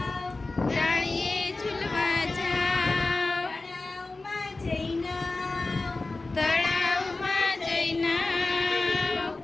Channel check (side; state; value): right; quieter; 3.4 dB